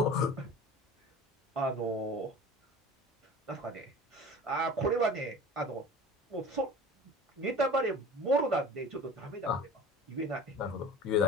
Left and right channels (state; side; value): normal; both; correlation 0.39